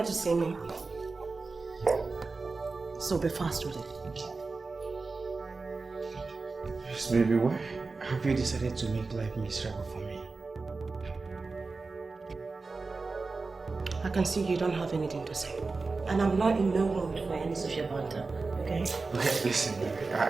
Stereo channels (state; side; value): quieter; left; 4.0 dB